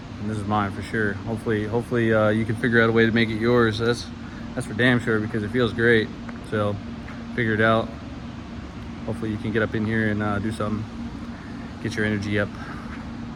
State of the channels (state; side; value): identical; both; correlation 1.00